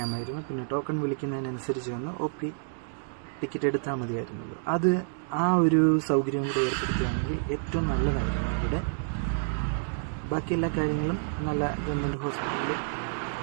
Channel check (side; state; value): left; silent; digital silence